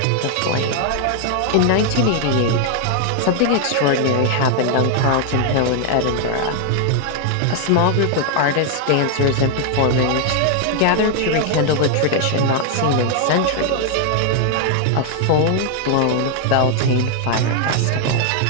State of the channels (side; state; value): both; different; correlation 0.00